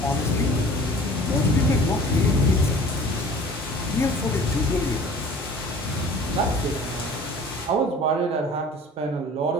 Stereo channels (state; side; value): normal; both; correlation 0.45